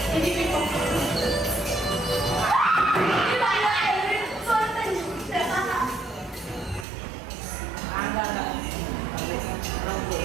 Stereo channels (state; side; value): drops out; left; at 6.9 s